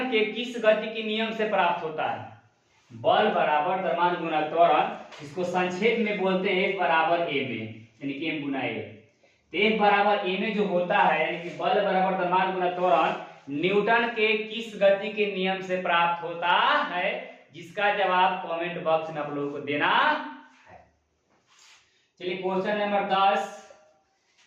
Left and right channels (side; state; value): both; identical; correlation 1.00